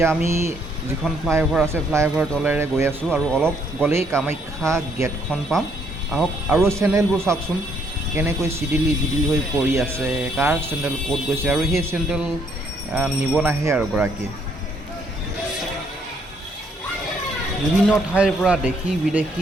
আমি যিখন ফ্লাইঅভাৰ আছে ফ্লাইঅভাৰ তলেৰে গৈ আছোঁ আৰু অলপ গ'লেই কামাখ্যা গেটখন পাম আহক আৰু চেণ্ডেলবোৰ চাওকচোন কেনেকৈ চিডিলি হৈ পৰি আছে কাৰ চেণ্ডেল ক'ত গৈছে আৰু সেই চেণ্ডেল নিব নাহে আৰু গৰাকীয়ে বিভিন্ন ঠাইৰ পৰা দেশী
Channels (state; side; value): normal; both; correlation 0.69